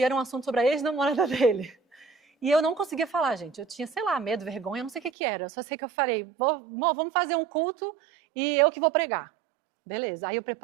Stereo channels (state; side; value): drops out; left; at 5.1 s